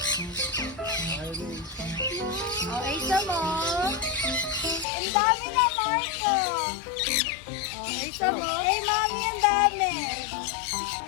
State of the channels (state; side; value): drops out; right; at 4.9 s